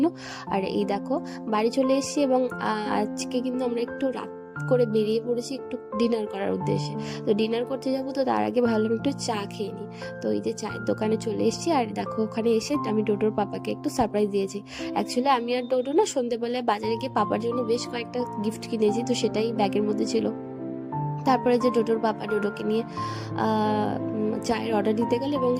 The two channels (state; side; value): identical; both; correlation 1.00